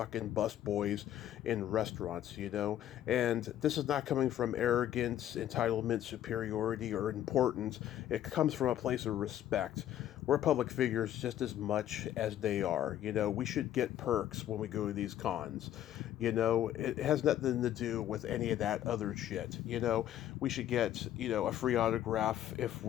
busboys in restaurants, and this is not coming from arrogance, entitlement, superiority, or importance. It comes from a place of respect. We're public figures just as much as they are. We should get perks when we go to these cons. It has nothing to do with any of that other shit. We should get, a free autograph if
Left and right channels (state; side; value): quieter; right; 11.9 dB